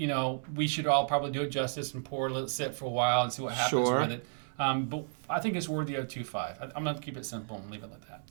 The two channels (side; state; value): left; silent; digital silence